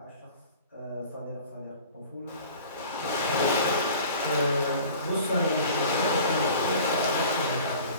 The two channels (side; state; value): both; inverted; correlation -0.44